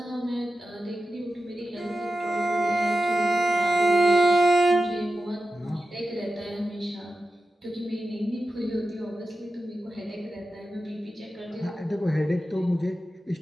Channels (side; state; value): both; normal; correlation 0.92